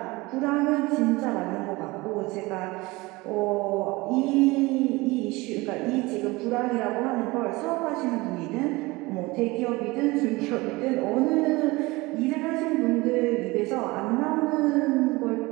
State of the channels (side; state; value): left; quieter; 22.4 dB